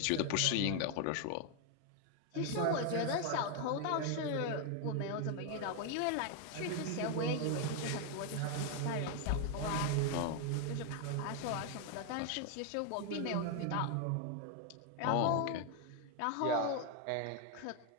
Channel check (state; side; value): different; both; correlation 0.01